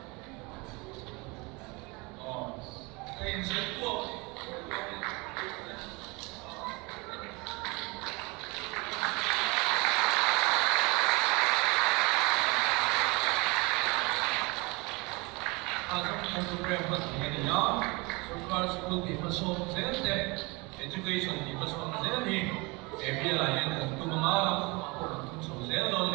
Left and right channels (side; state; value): left; quieter; 26.5 dB